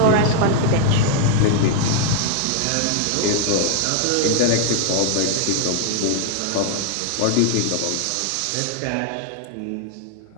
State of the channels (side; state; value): both; different; correlation 0.00